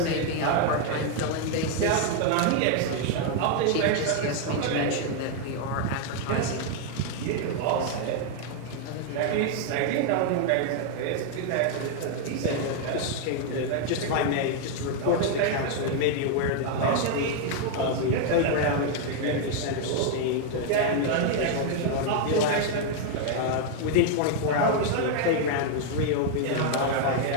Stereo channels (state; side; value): different; both; correlation 0.00